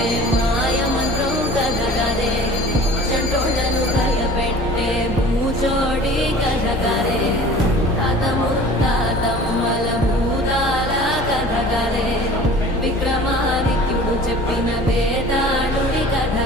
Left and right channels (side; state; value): both; normal; correlation 0.44